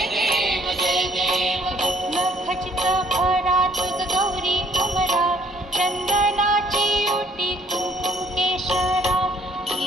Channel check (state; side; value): normal; both; correlation 0.62